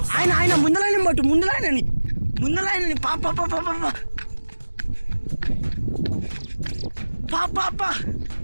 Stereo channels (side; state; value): both; inverted; correlation -1.00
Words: ఆయన ముందలైన పట్టు. ముందలైనని పాప